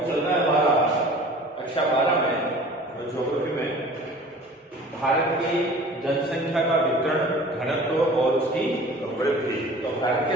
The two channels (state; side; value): normal; both; correlation 0.44